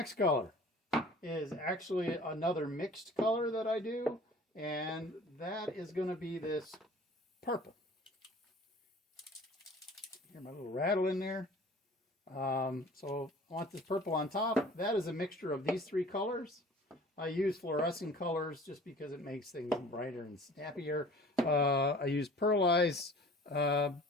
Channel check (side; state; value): both; normal; correlation 0.46